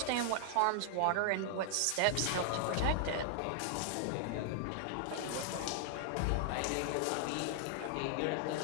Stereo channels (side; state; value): both; different; correlation -0.01